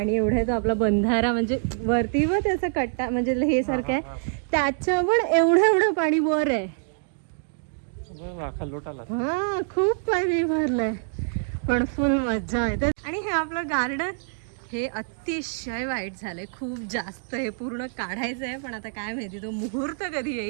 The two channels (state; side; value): silent; left; digital silence